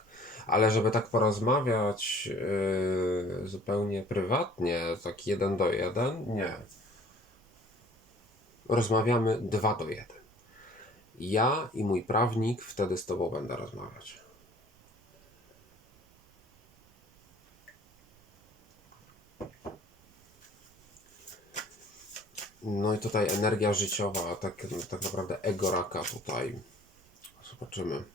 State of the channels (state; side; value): normal; both; correlation 0.52